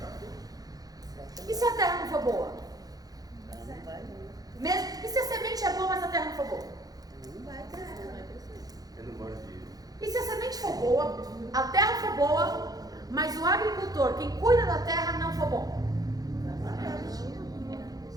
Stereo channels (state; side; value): late; left; 0.18 ms